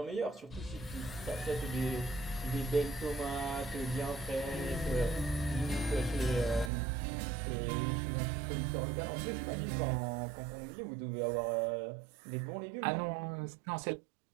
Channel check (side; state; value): left; drops out; at 6.7 s